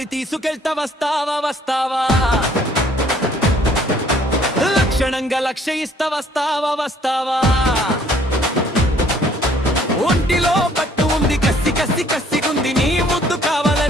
తీసుకెళ్తా వస్తావా వస్తావా, లక్షణంగా లక్ష్య ఇస్తా వస్తావా వస్తావా. ఒంటిలో పట్టు ఉంది, కసి కసి కసిగుంది, నీ ముద్దు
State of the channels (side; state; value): both; normal; correlation 0.60